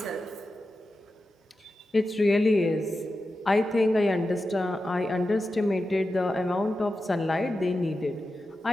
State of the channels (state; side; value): normal; both; correlation 0.92